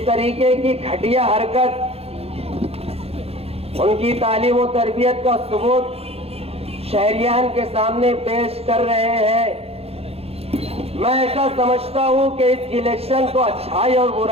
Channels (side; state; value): left; late; 0.29 ms